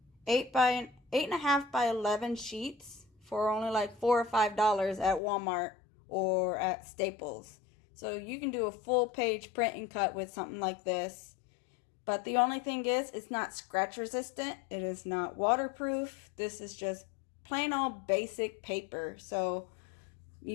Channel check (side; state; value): right; drops out; at 5.2 s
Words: 8.5 by 11 sheets for only like $4 or $5 at Walmart or at Staples. So you can do a full page print and cut with something like this. But the only thing is, it's not scratch resistant. It is not waterproof. This is just plain old basic paper. So